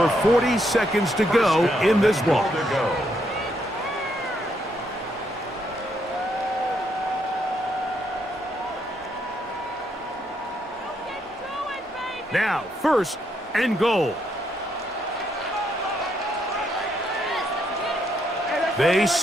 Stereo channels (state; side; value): normal; both; correlation 0.75